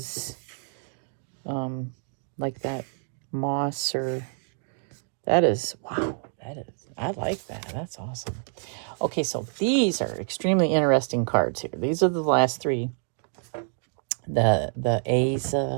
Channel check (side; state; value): left; silent; 60 dB below the other